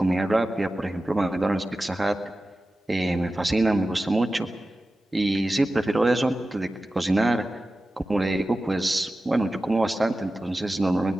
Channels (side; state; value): both; normal; correlation 0.94